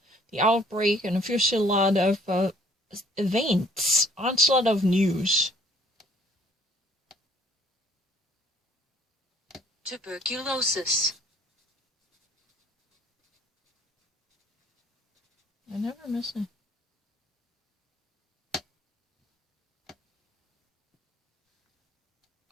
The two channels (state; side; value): normal; both; correlation 0.59